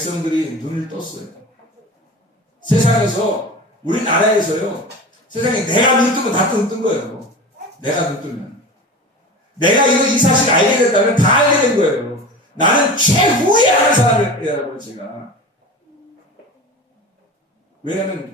눈을 떴어요. 세상에서 우리나라에서요. 세상에 내가 눈 뜨면 다 뜬 거예요. 내가 눈 뜨면. 내가 이 사실 알게 됐다면 다 알게 된 거예요. 나는 최후에 아는 사람이라고 제가. 왜냐하면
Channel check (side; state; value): both; normal; correlation 0.32